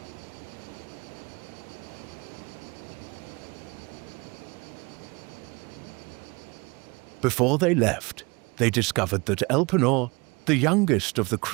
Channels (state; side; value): quieter; left; 26.5 dB